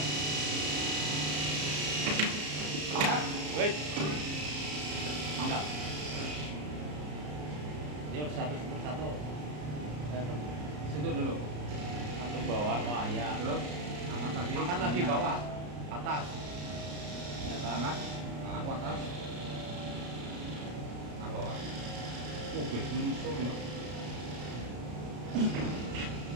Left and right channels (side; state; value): left; late; 33 ms